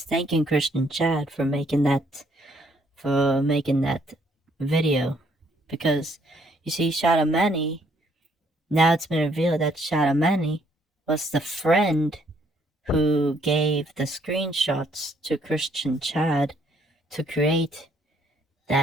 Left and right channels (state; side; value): normal; both; correlation 0.67